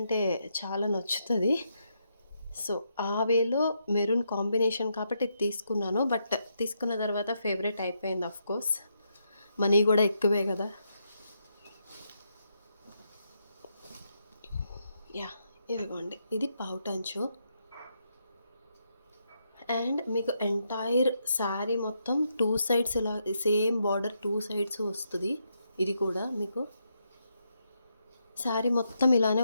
చాలా నచ్చుతది. సో, ఆ వేలో మెరూన్ కాంబినేషన్ కాబట్టి ఇది తీసుకున్నాను. బట్ తీసుకున్న తర్వాత ఫేవరెట్ అయిపోయింది ఆఫ్‌కోర్స్. మనీ గూడా ఎక్కువే గదా! యాహ్! ఇదిగోండి. ఇది పౌటంచు. అండ్ మీకు ఎంటైర్ శారీ మొత్తం 2 సైడ్స్ ఇలా సేమ్ బార్డర్ 2 సైడ్స్ వస్తది. ఇది కూడా మీకు శారీ మొత్తం ఇలానే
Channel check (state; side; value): inverted; both; correlation -0.80